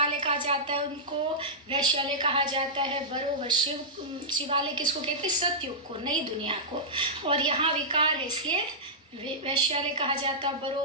कहा जाता है, उनको वैश्यालय कहा जाता है। बरोबर शिवालय किसको कहते हैं? सतयुग को, नई दुनिया को। और यहाँ विकार है, इसलिए वैश्यालय कहा जाता है।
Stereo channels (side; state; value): both; normal; correlation -0.14